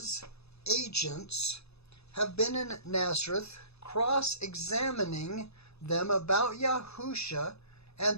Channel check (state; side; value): late; right; 0.79 ms